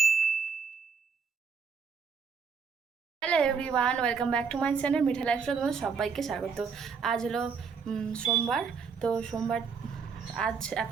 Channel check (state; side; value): quieter; left; 5.8 dB